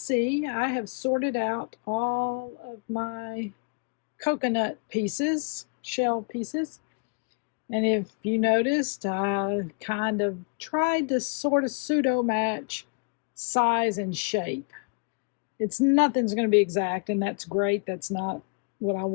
I have sorted out all of my coconut pieces, shell pieces. And if you noticed, I kind of tried to sort of pseudo match size and shape. Nothing's going to be exact, and that's great. That's not what I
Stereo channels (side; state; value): right; quieter; 37.3 dB